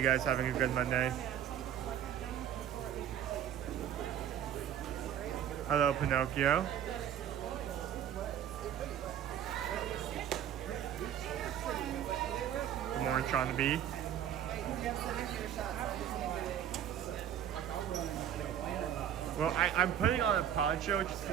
guys having a good Monday? Hello, Pinocchio. Good morning, Sean the Bee. Well, I'm putting on a poncho.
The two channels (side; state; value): left; quieter; 9.9 dB